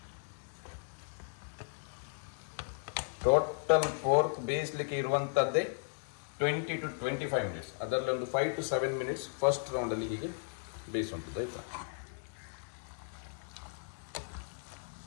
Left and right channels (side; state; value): right; silent; digital silence